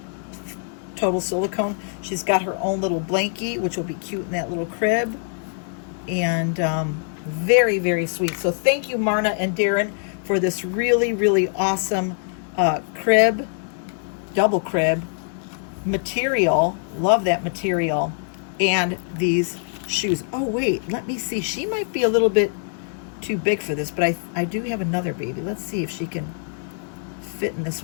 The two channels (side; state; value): right; silent; digital silence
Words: total silicone. She's got her own little blankie, which will be cute in that little crib. And very, very sweet. So thank you, Marna and Deron, for this really, really awesome crib, double crib material. Love that material. And these shoes. Oh, wait, let me see. She might be a little bit too big for this, but I do have another baby. Let's see if she can fit in this